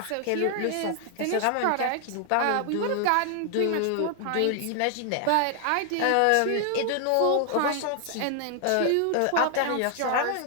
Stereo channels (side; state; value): both; different; correlation 0.00